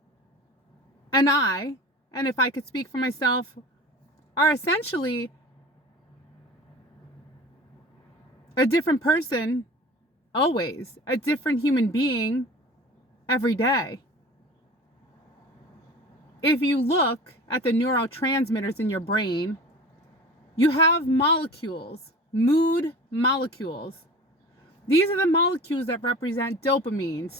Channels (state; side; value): normal; both; correlation 0.38